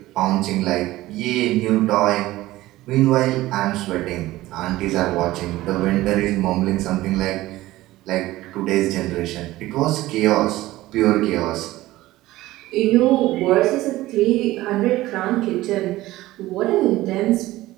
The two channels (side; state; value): left; quieter; 17.0 dB